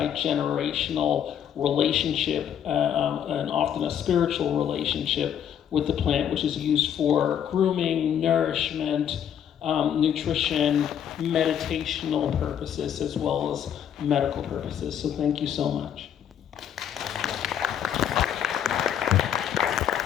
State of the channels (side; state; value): right; quieter; 9.3 dB